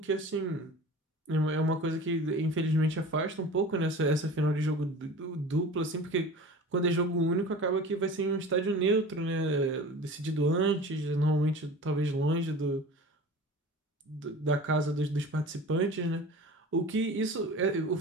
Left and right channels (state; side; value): normal; both; correlation 0.38